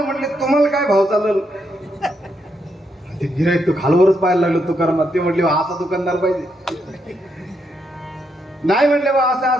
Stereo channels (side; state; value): both; normal; correlation 0.79